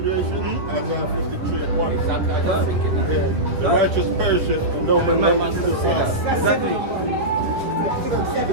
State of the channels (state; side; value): late; left; 10 ms